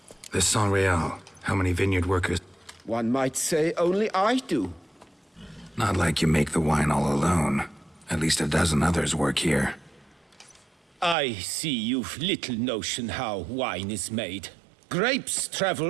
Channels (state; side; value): drops out; left; at 11.2 s